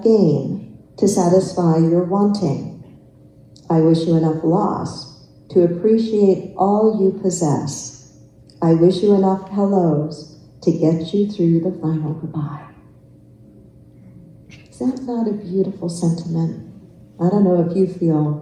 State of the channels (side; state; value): both; identical; correlation 1.00